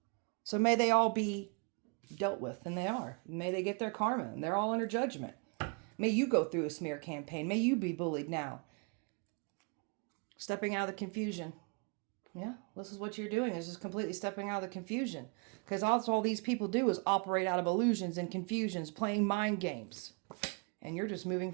So may they all be dealt with. And they are. May they get their karma. And they're all under judgment. May you go through a smear campaign. May you be bullied now. Stepping out of the confusion. Yeah, this is what you're doing, is just completely stepping out of the confusion. Because all these people do is operate out of illusions and confusions, playing mind games. And you're just moving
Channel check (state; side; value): quieter; left; 35.7 dB